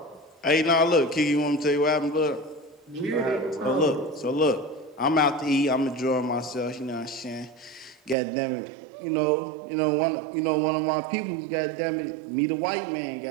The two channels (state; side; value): drops out; left; at 8.2 s